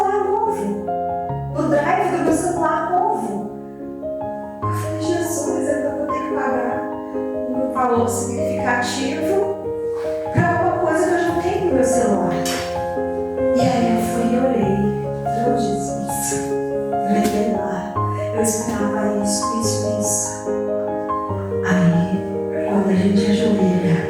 novo, no drive do meu celular novo. Eu falei: Jesus, eu vou ter que pagar um valor significativo para uma coisa que eu já tenho no meu celular. E aí eu fui e orei: oh, Jesus, levei lá, eu esperava isso. Aí, quando a gente ajoelha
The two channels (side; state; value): both; identical; correlation 1.00